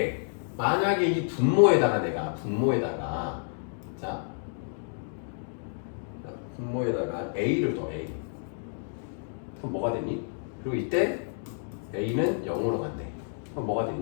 만약에 이 분모에다가 내가 자 분모에다가 a를 더 a 그럼 뭐가 되니? 그리고 이때 a는 0으로 간대. 그럼 뭐가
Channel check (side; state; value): right; silent; digital silence